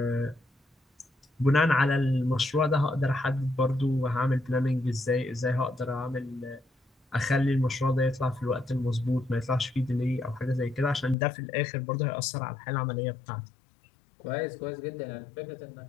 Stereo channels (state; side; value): drops out; right; at 11.2 s